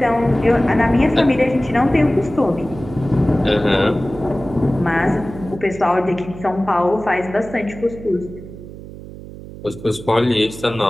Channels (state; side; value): noise; right; hum, 14 dB below the sound